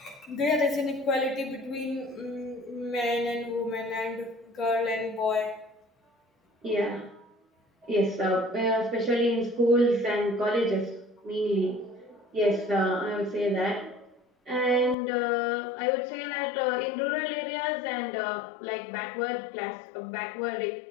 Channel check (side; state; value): right; drops out; at 15.0 s